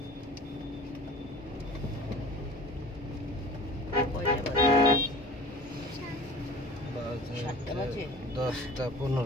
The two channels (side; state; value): both; normal; correlation 0.42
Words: কয়টা বাজে? সাতটা বাজে? 10টা